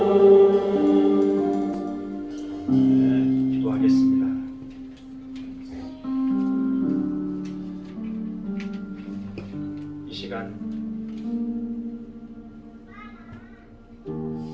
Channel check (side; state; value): both; identical; correlation 1.00